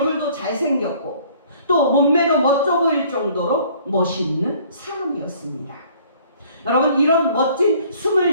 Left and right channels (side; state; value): both; inverted; correlation -0.56